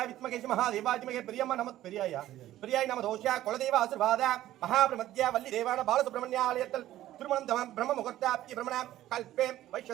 विद्महे महादेवाय धीमहि प्रियम्मा नमः प्रियाय नाम दोष्या कुलदेव आशीर्वाद महाब्रह्मज्ञ वल्ली देवान बालसुब्रह्मण्यालयत्तल திருமணம் பிரம்ம முகூர்த்தாப்தி பிரம்மண கல்பே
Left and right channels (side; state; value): left; quieter; 14.0 dB